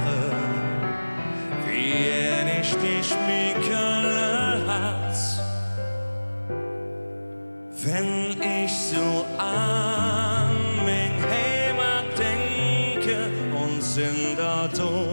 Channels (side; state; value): both; inverted; correlation -1.00